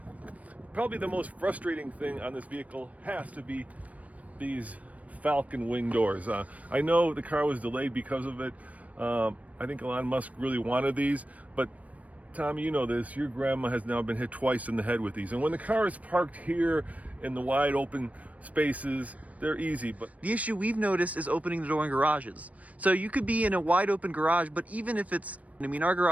probably the most frustrating thing on this vehicle has to be these Falcon wing doors. I know the car was delayed because of it. I think Elon Musk really wanted these, but Tommy, you know this, your grandma has now been hit twice in the head with these. And when the car is parked here in the wide open spaces, they're easy. But the issue we've noticed is opening the door in garages. So you could be in a wide open garage, but even if it's, I mean, our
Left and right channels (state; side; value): late; left; 0.069 ms